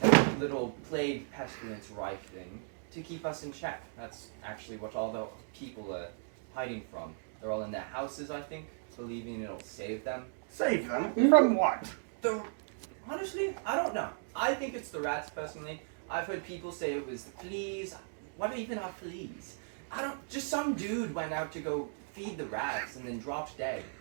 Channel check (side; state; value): left; silent; digital silence